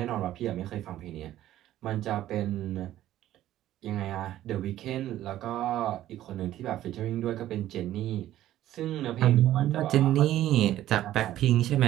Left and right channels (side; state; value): left; quieter; 13.4 dB